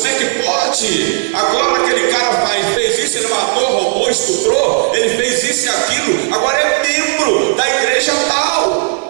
é que pode? Agora aquele cara fez isso, ele matou, roubou, estuprou, ele fez isso e aquilo, agora é membro da igreja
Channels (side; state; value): left; silent; digital silence